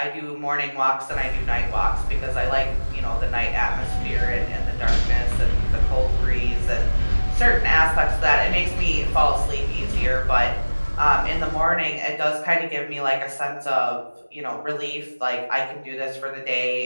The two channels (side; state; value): both; inverted; correlation -1.00